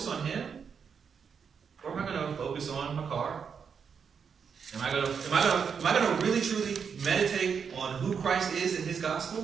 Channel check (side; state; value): left; quieter; 6.5 dB